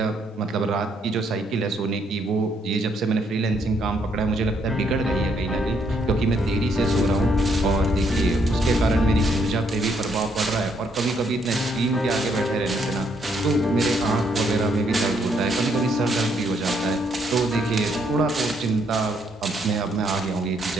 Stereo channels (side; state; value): both; normal; correlation 0.72